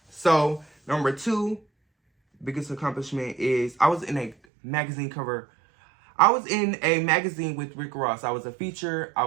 So, number 2 biggest accomplishment is I was in a magazine cover. I was in a magazine with Rick Ross. I was a feature. I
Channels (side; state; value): left; drops out; at 4.4 s